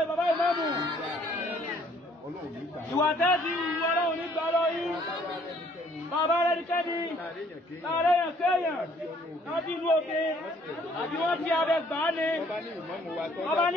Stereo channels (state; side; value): normal; both; correlation 0.61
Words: bàbá ìmáàmù. Ọlọ́run ní gbà. Ìwà tẹ́ẹ̀dì ìwọ Ọlọ́run ní gbà lọ yín. Bàbá rẹ̀ ní kẹ́ni. Láàrẹ̀ yàn kéèyàn. Láti inú òkè. Àbí wọ́n ti abẹ gbà á ni. Ọba